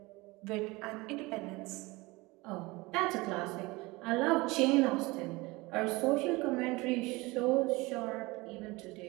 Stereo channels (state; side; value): quieter; left; 22.8 dB